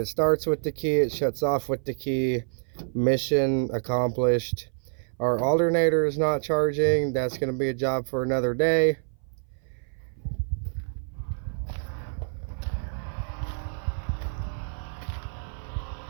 starts with the key, it shuts off with the key. Mission accomplished. Our alternator is not charging. That's going to be a job for another day.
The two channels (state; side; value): silent; left; 58 dB below the other